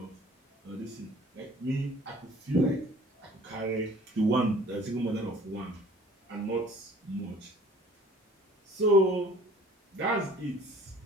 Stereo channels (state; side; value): normal; both; correlation 0.52